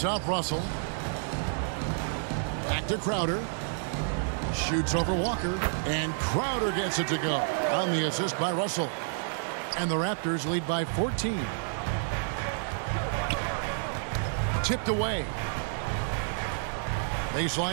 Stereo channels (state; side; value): silent; left; 58 dB below the other